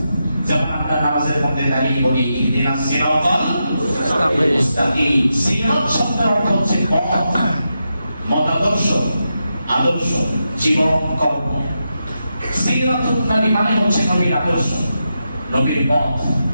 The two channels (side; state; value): both; inverted; correlation -0.87